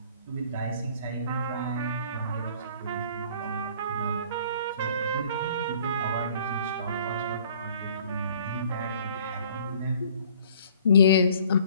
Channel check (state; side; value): inverted; both; correlation -0.55